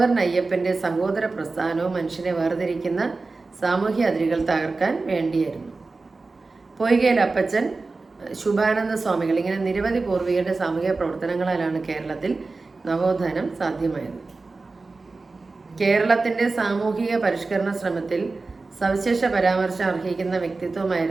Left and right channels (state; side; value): quieter; left; 3.7 dB